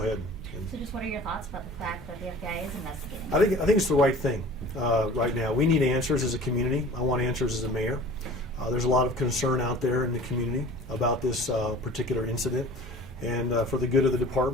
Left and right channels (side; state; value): both; normal; correlation 0.43